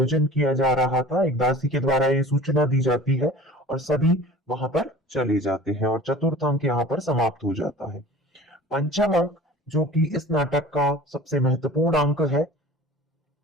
किया जा रहा था, एक दासी के द्वारा ये सूचना दी जाती है, और सभी वहां पर चले जाते हैं, और चतुर्थ अंक यहाँ पर समाप्त हो जाता है। पंचम अंक, जो कि इस नाटक का सबसे महत्वपूर्ण अंक है,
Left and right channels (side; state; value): both; normal; correlation 0.42